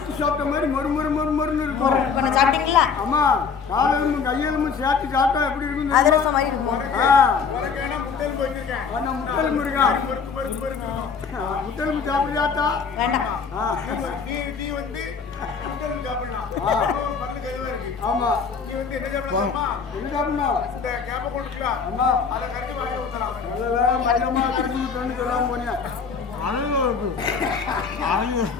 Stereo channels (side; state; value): right; quieter; 5.7 dB